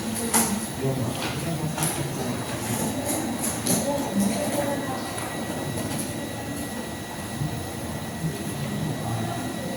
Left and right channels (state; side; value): identical; both; correlation 1.00